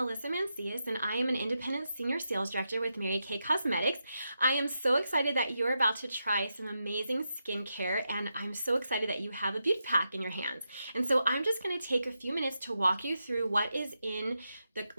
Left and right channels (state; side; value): inverted; both; correlation -0.86